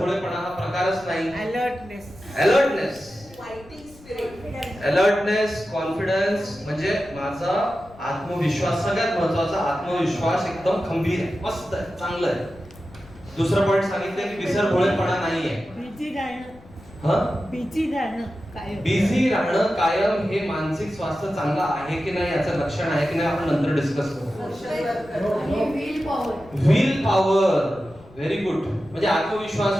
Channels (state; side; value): noise; left; rumble, 23 dB below the sound